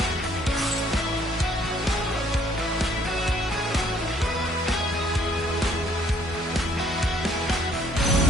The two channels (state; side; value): normal; both; correlation 0.63